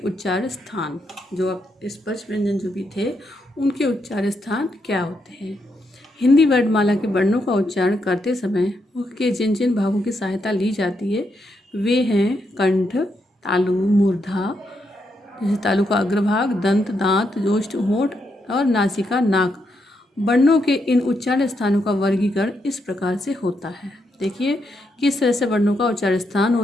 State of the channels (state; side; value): normal; both; correlation 0.80